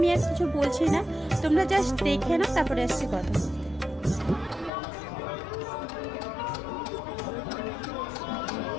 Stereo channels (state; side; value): drops out; right; at 4.7 s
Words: আর কিছু বলছি না, তোমরা জাস্ট দেখে নাও, তারপরে আসছি কথা বলতে।